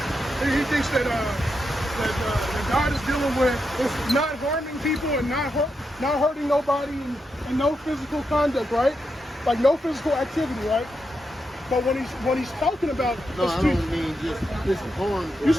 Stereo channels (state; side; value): normal; both; correlation 0.85